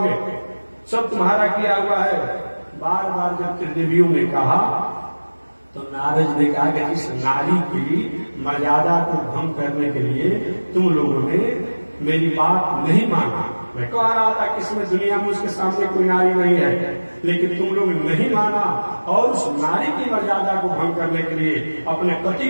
सब तुम्हारा किया हुआ है। बार बार जब त्रिदेवियों ने कहा तो नारद ने कहा कि इस नारी की मर्यादा को भंग करने के लिए तुम लोगों ने मेरी बात नहीं माना। मैं कह रहा था कि इसमें दुनिया में उसके सामने कोई नारी नहीं है, लेकिन तुम लोग नहीं माना और उस नारी की मर्यादा को भंग करने के लिए अपने पति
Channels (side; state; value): both; inverted; correlation -1.00